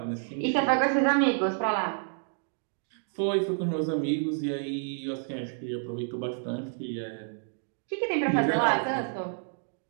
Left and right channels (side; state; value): left; silent; digital silence